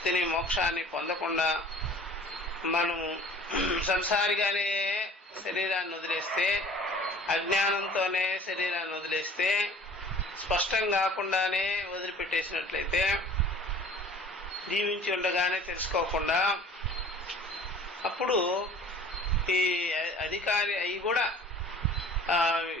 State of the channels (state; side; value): normal; both; correlation 0.48